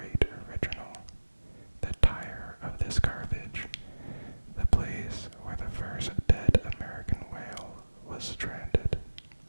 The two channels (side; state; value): both; inverted; correlation -1.00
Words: original, the tire of this garbage, the place where the first dead American whale was stranded.